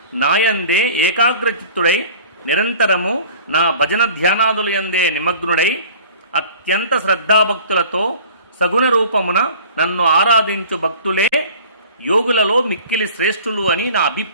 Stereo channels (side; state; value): both; inverted; correlation -0.46